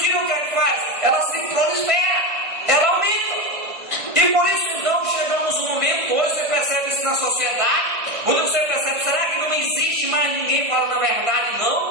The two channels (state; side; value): late; left; 1.6 ms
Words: o que é que faz? Ela se prolifera, ela aumenta. E por isso então chegamos no momento, hoje você percebe isso na sociedade, quando você percebe, será que não existe mais ninguém falando a verdade?